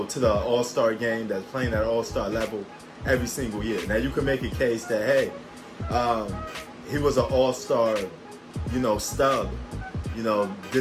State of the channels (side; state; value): both; identical; correlation 1.00